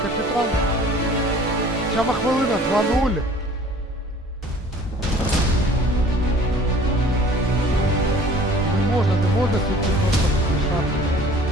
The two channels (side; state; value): both; normal; correlation 0.49